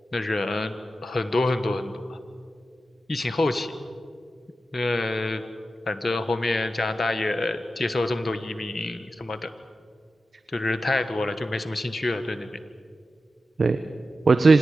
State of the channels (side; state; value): both; normal; correlation 0.91